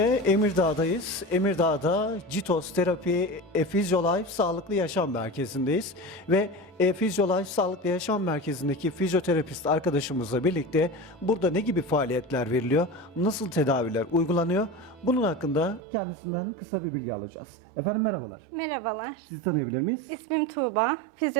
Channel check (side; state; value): left; drops out; at 15.8 s